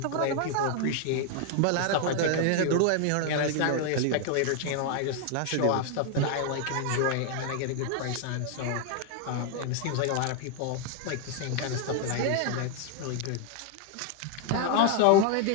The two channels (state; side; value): different; both; correlation 0.00